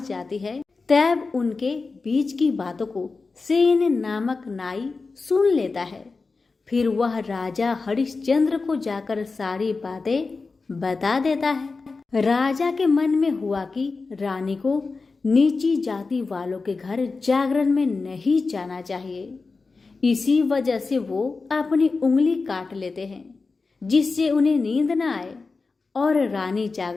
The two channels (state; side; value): quieter; right; 4.1 dB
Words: जाती है तब उनके बीच की बातों को सेन नामक नाई सुन लेता है। फिर वह राजा हरिश्चंद्र को जाकर सारी बातें बता देता है। राजा के मन में हुआ कि रानी को नीची जाति वालों के घर जागरण में नहीं जाना चाहिए। इसी वजह से वो अपनी उंगली काट लेते हैं जिससे उन्हें नींद न आए और रानी